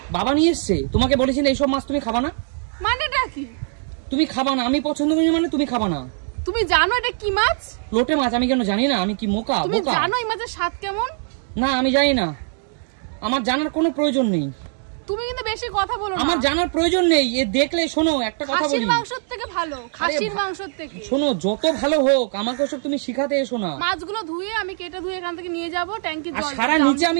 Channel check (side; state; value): left; silent; 59 dB below the other